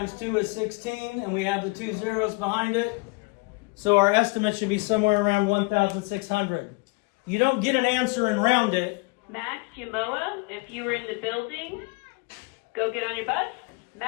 2 is 16. And we have the 2 zeros behind it. So our estimate should be somewhere around 1,600. You don't get an answer and round it. Max Yamoa, if you were in the building, go get on your bus.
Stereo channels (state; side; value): quieter; right; 28.4 dB